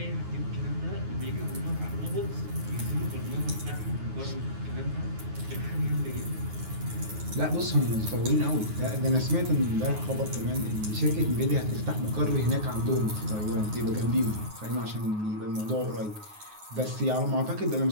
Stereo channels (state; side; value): late; left; 9.5 ms